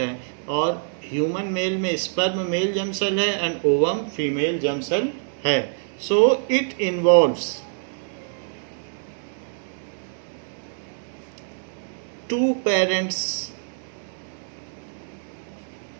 और ह्यूमन मेल में स्पर्म मेल जर्म सेल है and ovum female germ cell है। So it involves two parents,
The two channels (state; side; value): silent; left; digital silence